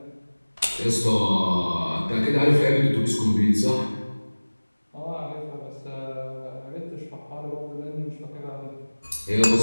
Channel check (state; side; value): inverted; both; correlation -1.00